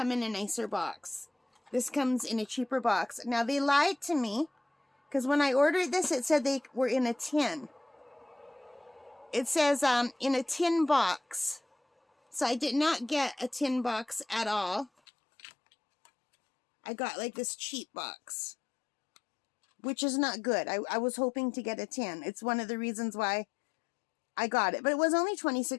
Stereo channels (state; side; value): drops out; right; at 14.9 s